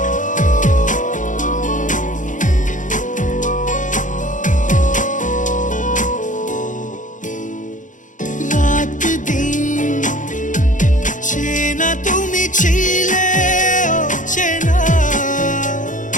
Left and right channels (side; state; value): right; late; 0.37 ms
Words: রাত দিন চেনা তুমি ছিলে, চেনা